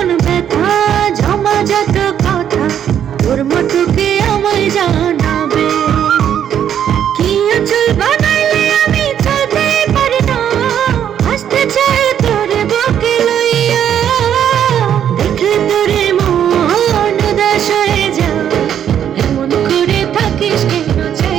ব্যথা, জমাজাত কথা, তোর মতো কে আমায় জানাবে? কি আঁচল বানাইলে আমি চলতে পারি না, আসতে চাই তোরে বুকে লইয়া। দেখলে তোরে মন উদাস হয়ে যায়, এমন করে থাকিস কেন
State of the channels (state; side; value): quieter; left; 9.5 dB